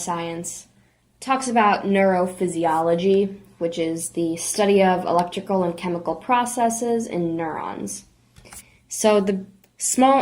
talks about neurophysiology, which is the study of electrical and chemical processes in neurons. So the small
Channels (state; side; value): identical; both; correlation 1.00